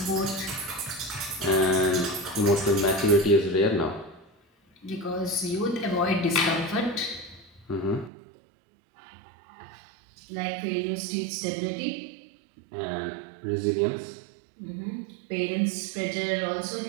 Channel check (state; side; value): drops out; left; at 8.1 s